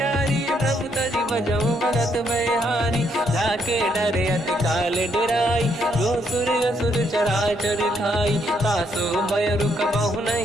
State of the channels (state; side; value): normal; both; correlation 0.73